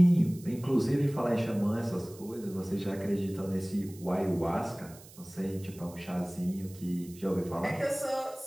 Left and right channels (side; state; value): right; noise; hiss, 21 dB below the sound